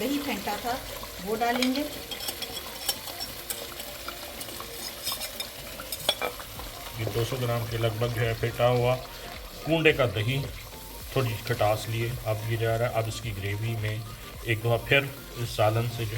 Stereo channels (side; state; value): both; identical; correlation 1.00